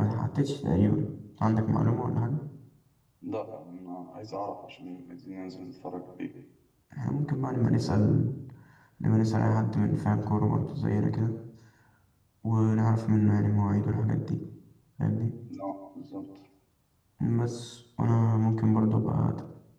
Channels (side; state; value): both; identical; correlation 1.00